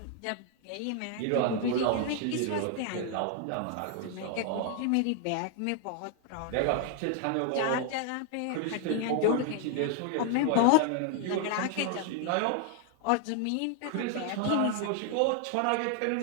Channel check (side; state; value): both; different; correlation 0.00